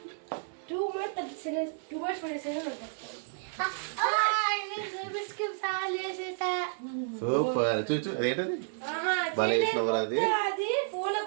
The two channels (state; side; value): silent; left; 57 dB below the other